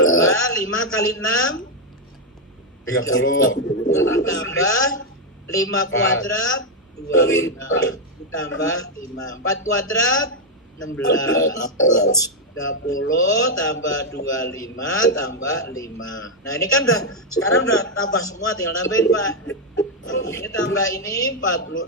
5 kali 6 30. tambah 5 kuadrat 25 tambah 5. 4 kuadrat 16. 30 tambah 25 tambah 5. Nah ini kan sekarang udah tambah semua, tinggal nambahin Pak. Ini tambah ini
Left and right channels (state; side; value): normal; both; correlation 0.01